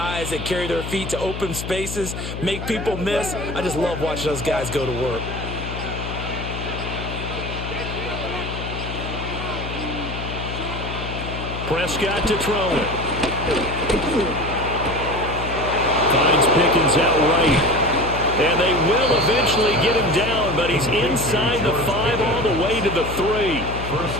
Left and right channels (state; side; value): noise; left; hum, 7 dB below the sound